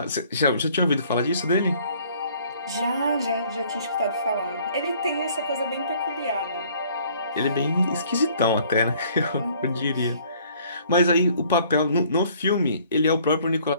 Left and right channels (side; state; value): both; inverted; correlation -0.58